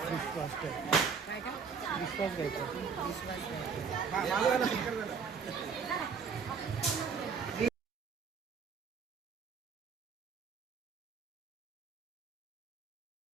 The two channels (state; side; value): quieter; left; 5.9 dB